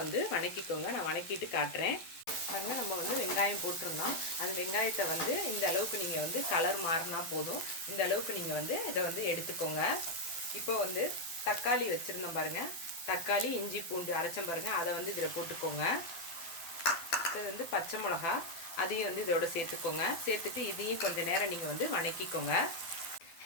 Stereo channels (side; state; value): right; late; 12 ms